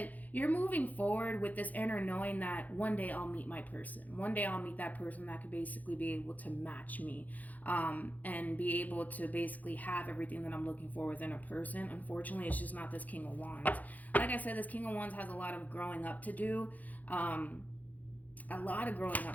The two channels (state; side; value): late; right; 0.079 ms